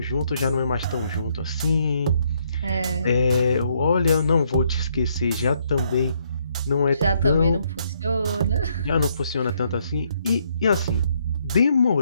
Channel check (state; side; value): inverted; both; correlation -0.72